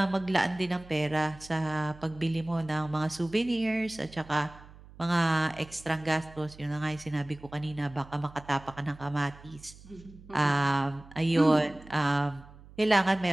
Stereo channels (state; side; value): noise; right; hum, 20 dB below the sound